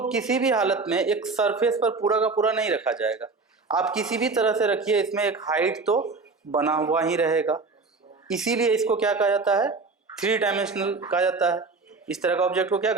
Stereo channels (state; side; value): quieter; left; 4.1 dB